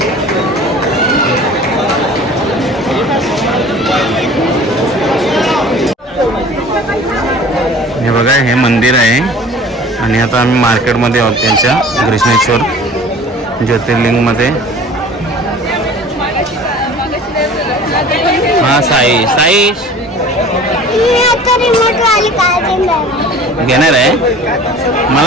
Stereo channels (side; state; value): both; normal; correlation 0.45